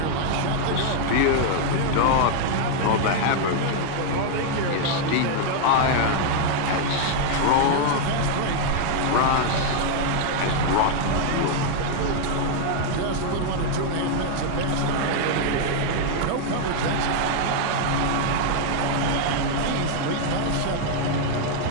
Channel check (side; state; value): both; different; correlation 0.00